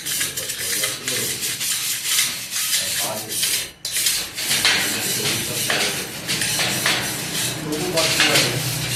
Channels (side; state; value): both; identical; correlation 1.00